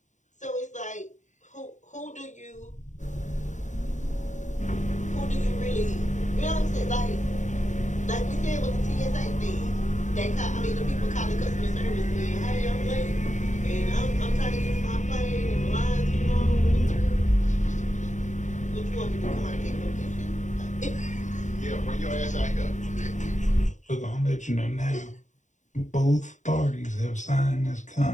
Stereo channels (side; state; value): right; late; 0.35 ms